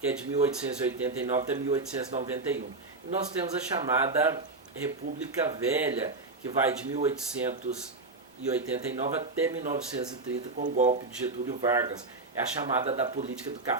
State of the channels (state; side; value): quieter; left; 3.5 dB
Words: é de 1889 até 1891. E nós temos a chamada República Velha, que vai de 1889 até 1930, com o golpe de Getúlio Vargas. É a chamada da política do